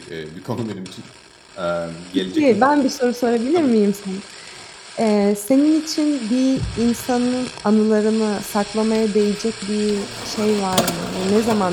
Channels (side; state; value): both; identical; correlation 1.00